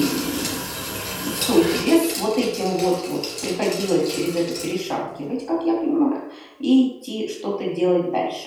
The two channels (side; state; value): both; identical; correlation 1.00